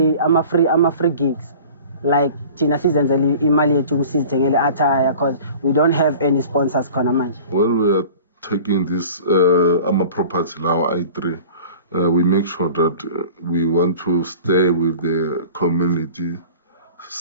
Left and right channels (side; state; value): both; inverted; correlation -0.42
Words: gigs like thina sizenzele imali yethu kusizithengele attire because we don't have any sponsors khona manje. When we are taking this ama property now I3 we make sure that we want to stay with the community